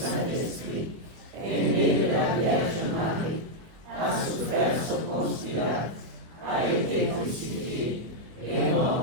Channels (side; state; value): left; late; 24 ms